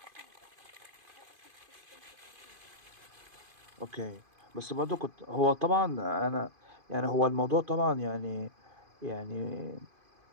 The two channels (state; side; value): late; left; 2.5 ms